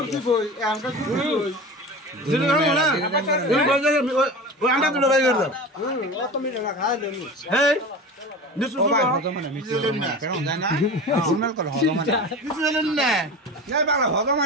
কি কই আমটা কি কই দিলে খাবো না ওই বল দে ওই আন্ডা দুটো বাই করে দাও ও তুমি না খাই দেনি এই নিসু হজম না মিষ্টি না কেন জানা নরমাল কর হজম না কিছু জানেন না এই বাবা হজম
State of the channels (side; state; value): both; normal; correlation 0.32